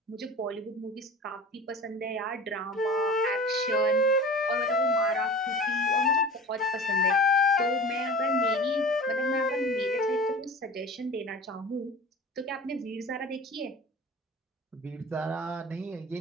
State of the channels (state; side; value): normal; both; correlation 0.38